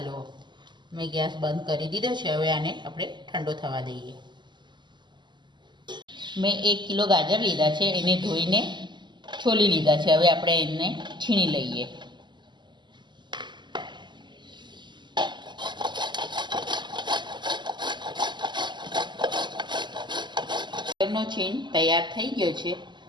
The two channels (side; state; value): left; late; 0.22 ms